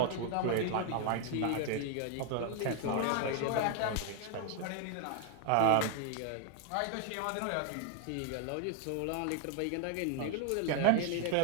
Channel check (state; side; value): different; both; correlation 0.00